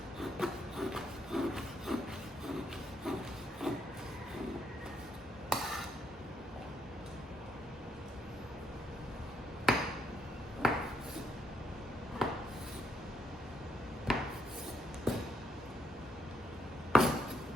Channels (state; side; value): normal; both; correlation 0.76